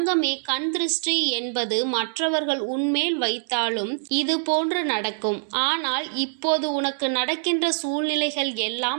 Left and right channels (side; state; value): left; silent; digital silence